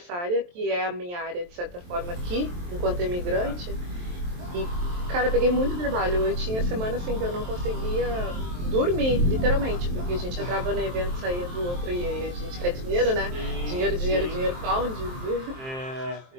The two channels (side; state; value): left; late; 23 ms